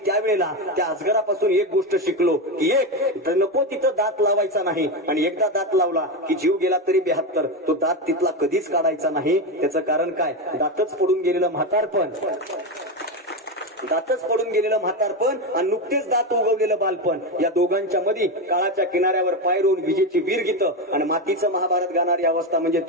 त्यावेळेला त्या अजगरापासून एक गोष्ट शिकलो की एक नको तिथं दात लावायचा नाही, आणि एकदा दात लावला की जीव गेला तरी 72, तो दात तिथला कधीच काढायचा नाही. त्याचं कारण काय, दातच पडून गेलेलं म्हातारपण, दातच पडून गेलेलं म्हातारपण आणि नुकतेच दात उगवलेलं बालपण, या दोघांच्या मध्ये काळाच्या किनाऱ्यावर पाय रोवून विजेची वीर गीतं आणि मातीचं महाभारत गाणारी अवस्था म्हणजे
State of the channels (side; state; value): both; normal; correlation 0.14